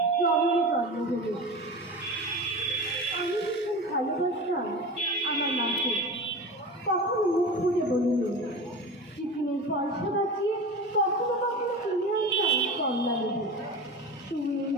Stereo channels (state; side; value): normal; both; correlation 0.30